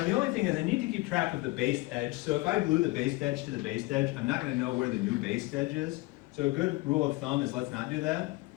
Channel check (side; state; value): right; quieter; 22.1 dB